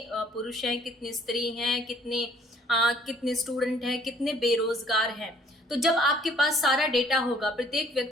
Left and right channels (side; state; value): both; normal; correlation 0.59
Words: पुरुष हैं, कितनी स्त्री हैं, कितने स्टूडेंट हैं, कितने बेरोजगार हैं। तो जब आपके पास सारा डेटा होगा, प्रत्येक